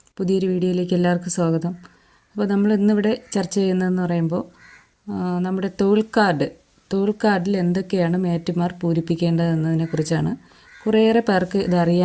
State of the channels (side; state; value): both; identical; correlation 1.00